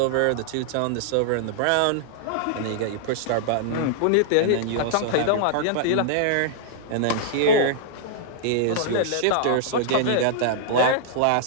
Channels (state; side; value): different; both; correlation -0.01